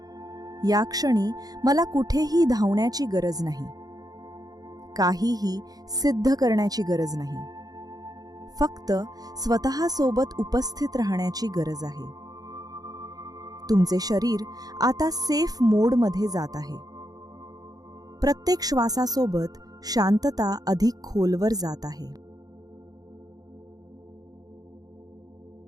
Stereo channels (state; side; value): late; left; 0.18 ms